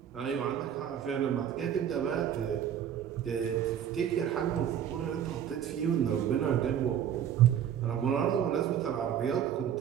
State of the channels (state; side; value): quieter; left; 9.6 dB